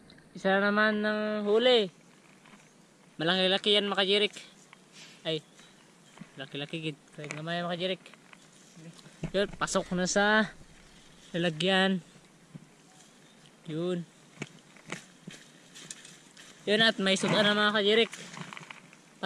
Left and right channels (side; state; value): both; identical; correlation 1.00